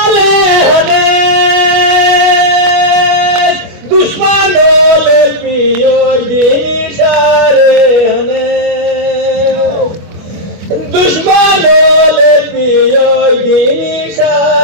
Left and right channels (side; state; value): left; late; 24 ms